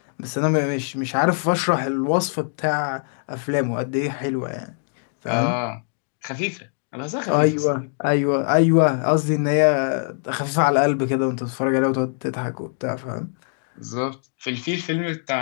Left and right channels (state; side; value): silent; right; digital silence